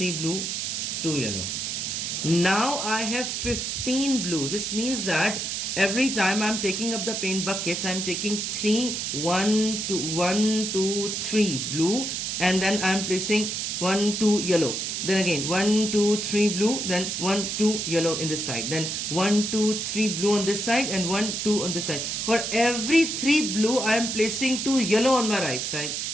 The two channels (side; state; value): right; noise; hiss, 2 dB below the sound